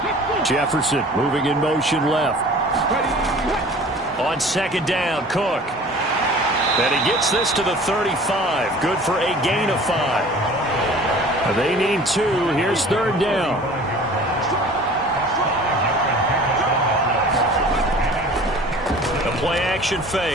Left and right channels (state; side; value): normal; both; correlation 0.45